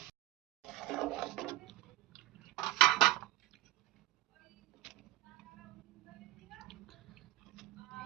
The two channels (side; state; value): left; quieter; 15.8 dB